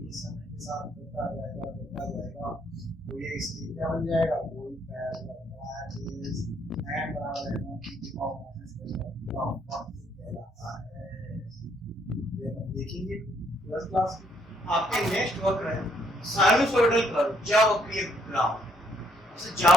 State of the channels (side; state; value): both; normal; correlation 0.69